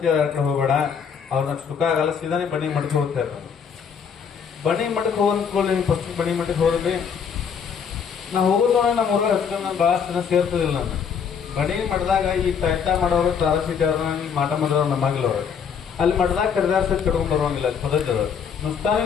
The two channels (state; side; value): quieter; right; 6.9 dB